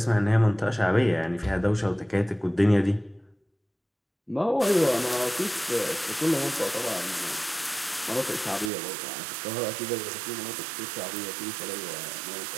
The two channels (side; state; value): left; drops out; at 8.7 s